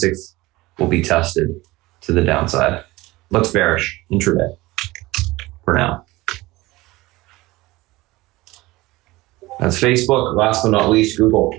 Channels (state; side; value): quieter; left; 19.8 dB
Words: will be tested to the downside. Looks bearish intraday for now. That's Facebook. Last but not least, Google.